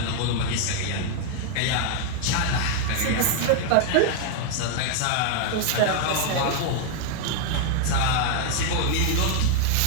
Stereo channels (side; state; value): both; different; correlation 0.00